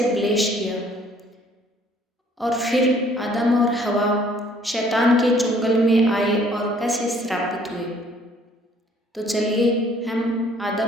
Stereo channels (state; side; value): normal; both; correlation 0.59